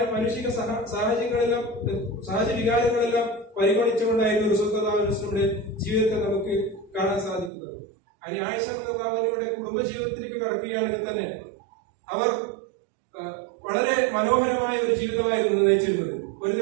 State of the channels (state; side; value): drops out; left; at 7.5 s